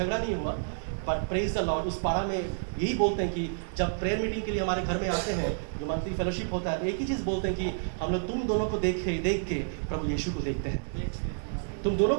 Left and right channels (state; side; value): silent; left; digital silence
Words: नहीं हुआ, बट प्रेज द लॉर्ड उस पारा में यही बोलते हैं कि जब प्रेयर मीटिंग के लिए हमारे घर में आते हैं, जो मंथली फेलोशिप होता है, तो एक ही चीज़ बोलते हैं कि हम लोग तुम दोनों को देख के प्रभु यीशु को देखते हैं, तुम दोनों